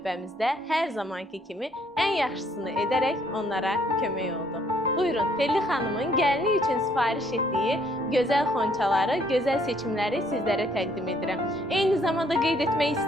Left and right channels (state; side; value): normal; both; correlation 0.66